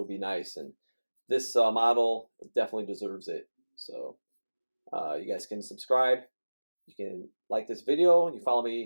be nice. And this model definitely deserves it. So you guys can subscribe. You can like this video. You follow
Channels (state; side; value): inverted; both; correlation -1.00